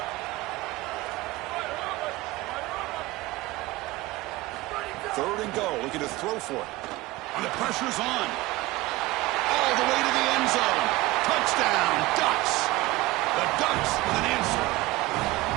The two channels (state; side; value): quieter; left; 19.4 dB